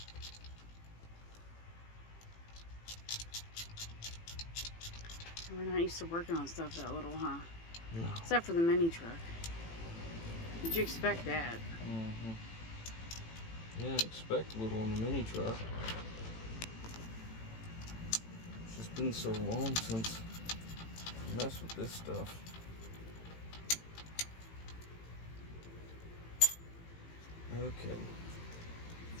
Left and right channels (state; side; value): late; right; 18 ms